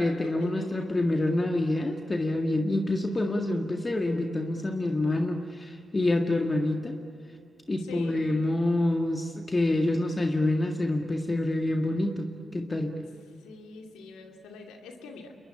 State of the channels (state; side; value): normal; both; correlation 0.93